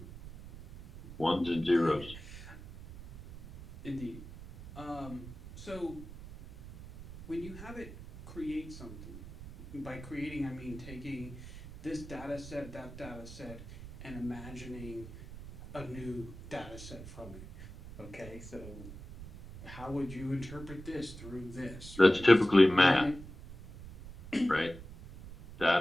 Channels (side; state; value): right; noise; rumble, 14 dB below the sound